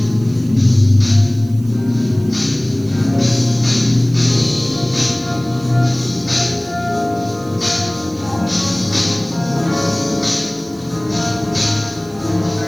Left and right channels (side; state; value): right; noise; hiss, 25 dB below the sound